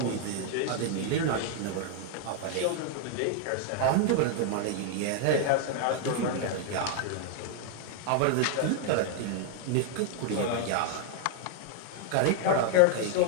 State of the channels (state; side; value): different; both; correlation 0.00